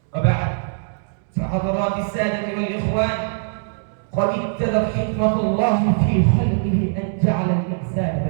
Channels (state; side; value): silent; left; digital silence